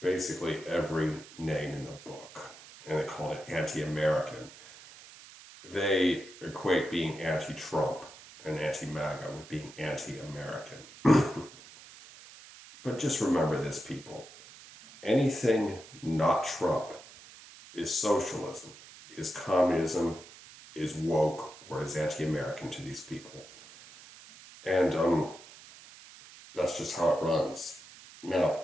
basically every name in the book. And they called it anti-American. They equate being anti-Trump and anti-MAGA with being anti-American. But just remember this, people. Anything not Trump is socialism, is communism, is woke, or is anti-American to these people. And that's just how it runs. Now,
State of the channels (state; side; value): noise; right; hiss, 19 dB below the sound